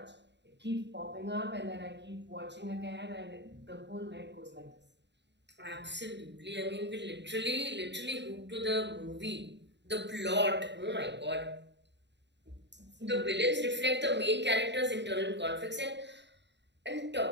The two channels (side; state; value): left; late; 0.51 ms